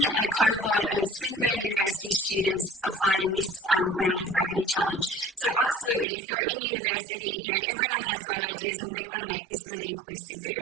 a cohort of Swinburne University students applied in this round of Gravity Challenge. So absolutely, if you're in university, everyone has great ideas and we want to make this really inclusive for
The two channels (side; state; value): left; drops out; at 6.1 s